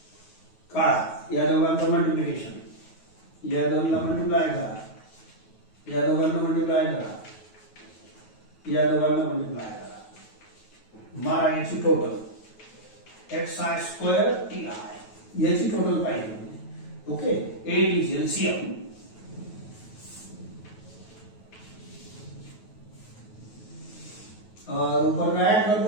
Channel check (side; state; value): right; late; 9.3 ms